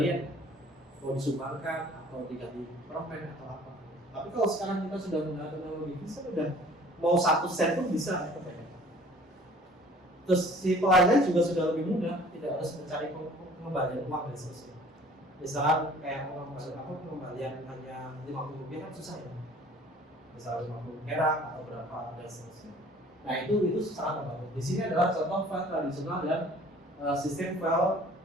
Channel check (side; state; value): both; normal; correlation 0.51